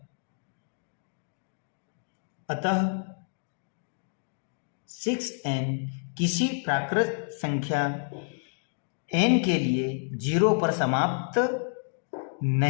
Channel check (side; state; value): right; silent; digital silence